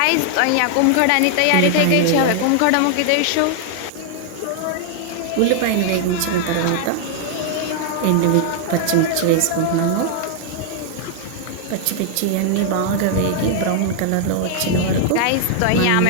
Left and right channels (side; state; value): both; different; correlation -0.01